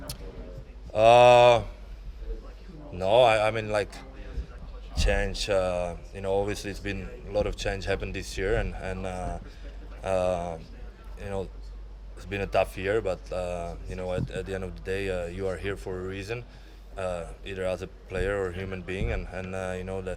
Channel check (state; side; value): identical; both; correlation 1.00